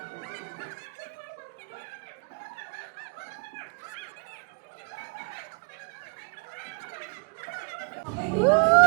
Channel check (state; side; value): quieter; left; 37.2 dB